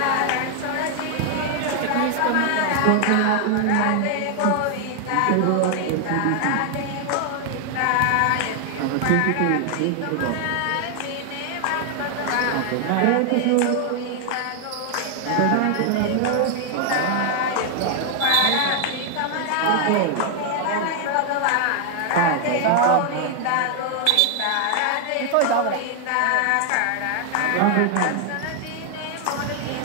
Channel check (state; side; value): different; both; correlation 0.00